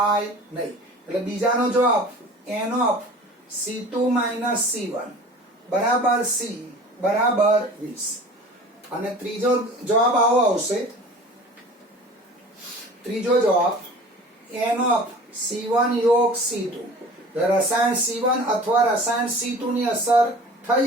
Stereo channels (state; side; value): normal; both; correlation 0.42